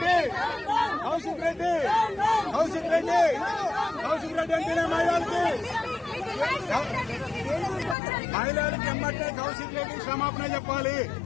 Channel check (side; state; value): right; drops out; at 8.0 s